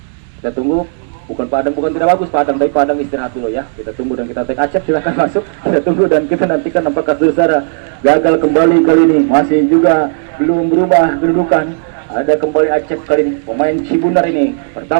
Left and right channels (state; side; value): silent; left; 70 dB below the other